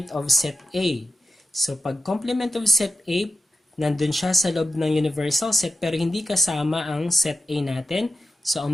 of set A. So, pag complement of set A, nandun siya sa loob ng universal set pero hindi kasama ang set A natin. So,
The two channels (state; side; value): normal; both; correlation 0.91